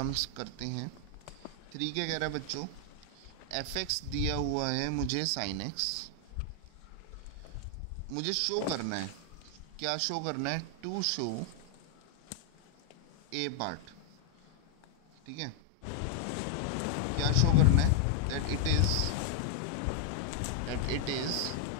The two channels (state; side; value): different; both; correlation 0.00